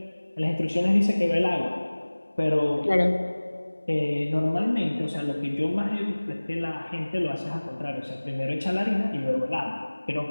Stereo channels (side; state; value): both; inverted; correlation -1.00